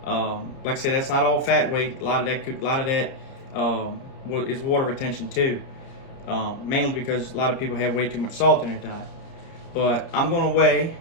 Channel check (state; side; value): late; right; 30 ms